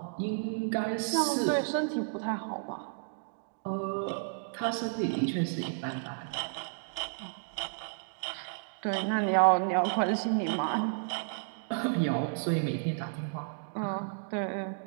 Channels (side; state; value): left; silent; digital silence